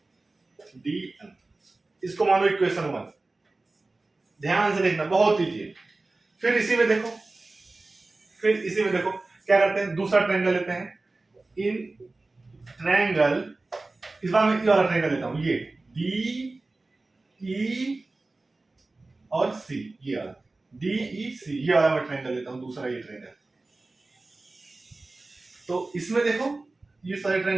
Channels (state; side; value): quieter; left; 3.2 dB